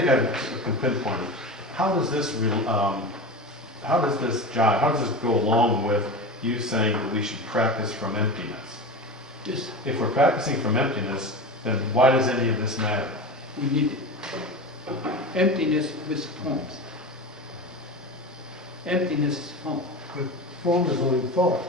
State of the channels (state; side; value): normal; both; correlation 0.27